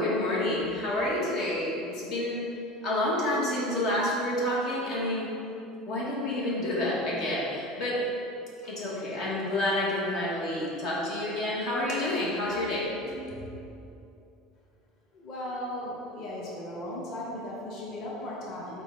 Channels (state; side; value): normal; both; correlation 0.31